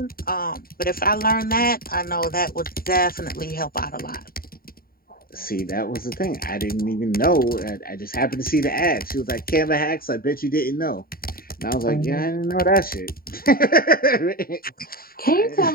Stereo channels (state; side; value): late; right; 0.43 ms